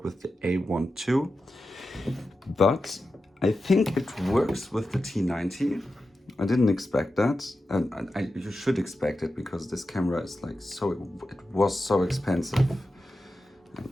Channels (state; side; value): normal; both; correlation 0.91